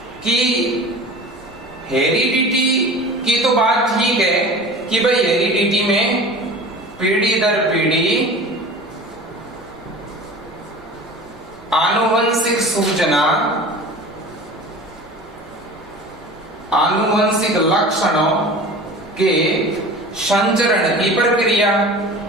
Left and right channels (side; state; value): both; normal; correlation 0.38